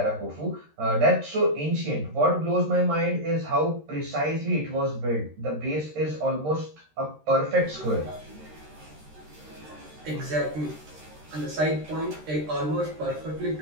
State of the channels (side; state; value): left; late; 13 ms